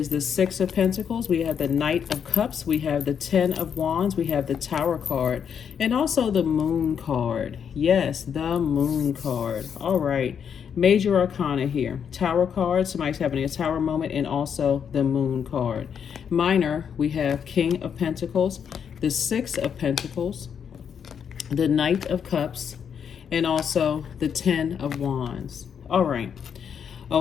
the Six of Pentacles. We have the Knight of Cups. We have the Ten of Wands. We have the Tower card. And also the Moon card. Yes, the Moon card. All right. Major Arcana here. Tower card. Somebody's having a Tower moment. And also the Moon card. Minor, we have King of Pentacles. The Six of Pentacles. The Knight of Cups. And also the Ten of Wands. All right.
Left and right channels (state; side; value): quieter; right; 7.6 dB